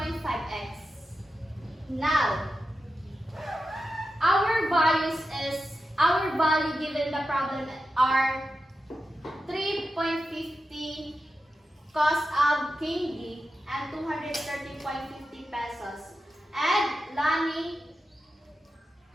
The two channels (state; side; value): normal; both; correlation 0.91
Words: Now, our value given the problem are 3.50 cost of candy and 230.50 pesos. And Lani